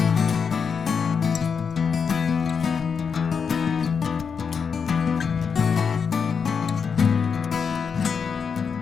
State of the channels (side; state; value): right; quieter; 6.2 dB